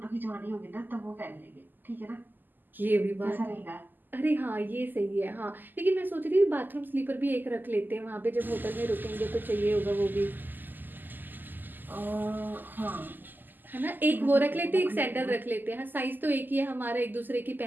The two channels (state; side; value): late; left; 0.089 ms